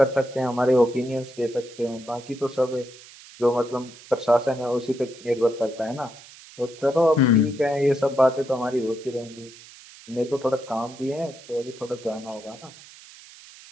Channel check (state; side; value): noise; right; hiss, 20 dB below the sound